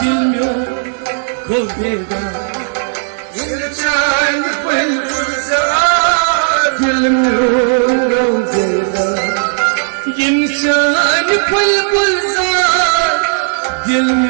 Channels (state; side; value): silent; left; digital silence